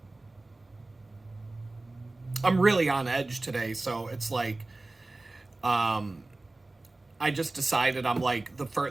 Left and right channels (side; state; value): left; quieter; 3.0 dB